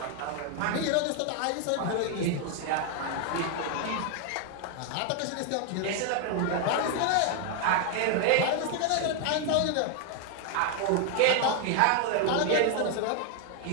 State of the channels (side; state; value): both; different; correlation 0.01